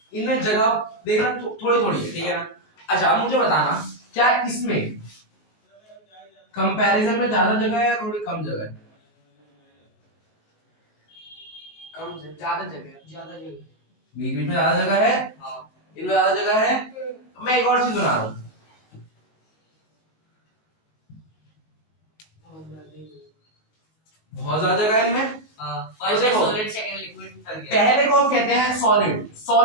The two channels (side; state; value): right; late; 19 ms